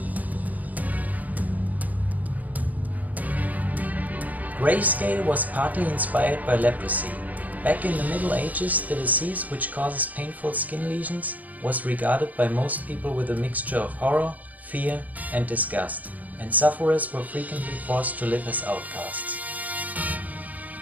Grayscale was partly inspired by leprosy. Back in the Middle Ages, the disease, which causes painful skin lesions, was regarded by most people with a mixture of horror, fear and disgust, and sufferers were frequently forced to live as outcasts.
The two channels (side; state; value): left; late; 0.076 ms